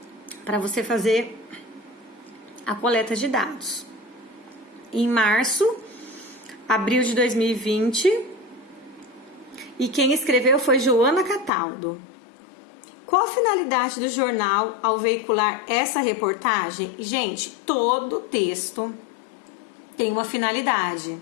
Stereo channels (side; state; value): right; drops out; at 11.5 s